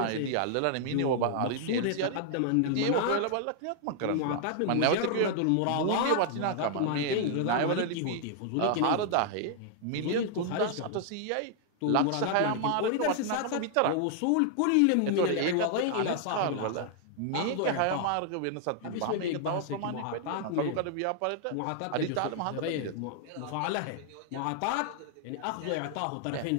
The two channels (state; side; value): different; both; correlation 0.00